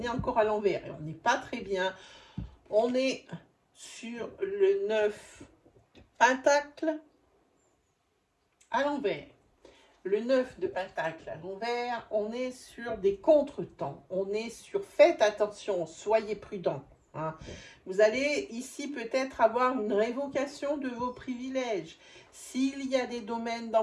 encore à l'envers et on n'est pas très bien. On est sur le 9 pentacle à l'envers. Le 9 de pentacle à l'envers, on est sur des contretemps. On est sur faites attention, soyez prudents. Hein. Vous allez ici peut-être avoir une révocation de vos privilèges. S'il y a des domaines dans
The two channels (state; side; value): identical; both; correlation 1.00